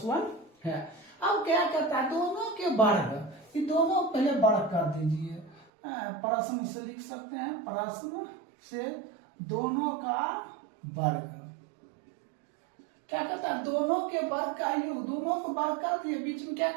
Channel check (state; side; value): drops out; left; at 5.7 s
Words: 1 है। अब क्या करता है दोनों के वर्ग, ये दोनों पहले वर्ग कर दीजिए, प्रश्न से लिख सकते हैं, प्रश्न से दोनों का वर्ग क्या कहता है दोनों के वर्ग का योग, दोनों को वर्ग कर दिए, बीच में क्या